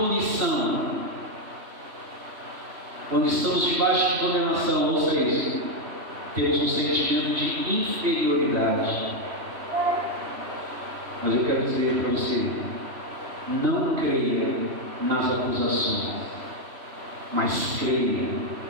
Quando estamos debaixo de condenação, ouça isso, temos um sentimento de inferioridade. Mas eu quero dizer para você, não creia nas acusações, mas creia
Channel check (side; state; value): left; late; 3.1 ms